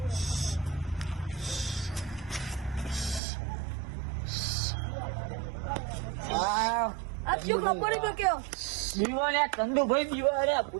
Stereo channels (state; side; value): drops out; left; at 3.2 s